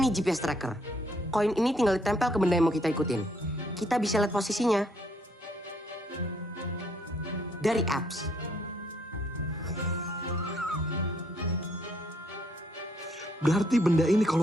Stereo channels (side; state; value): both; normal; correlation 0.69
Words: GPS tracker. Koin ini tinggal ditempel ke benda yang mau kita ikutin. Kita bisa lihat posisinya dari apps. Berarti benda ini